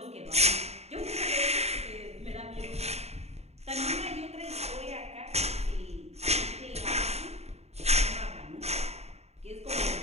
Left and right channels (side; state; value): left; late; 0.31 ms